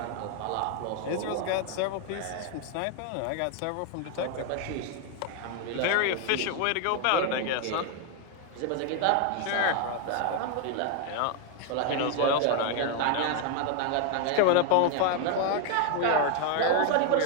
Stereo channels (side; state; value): both; different; correlation 0.00